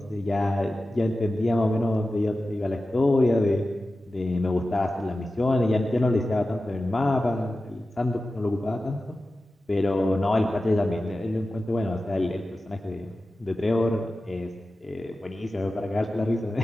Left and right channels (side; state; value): both; normal; correlation 0.94